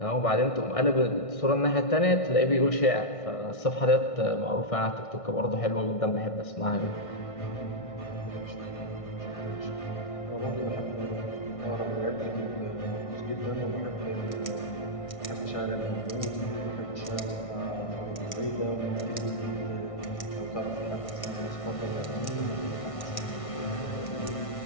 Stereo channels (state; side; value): late; right; 1.6 ms